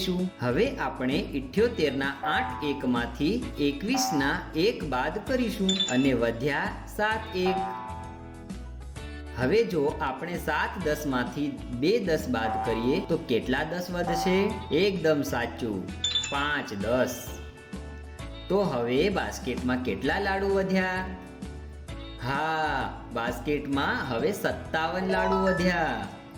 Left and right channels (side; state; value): both; identical; correlation 1.00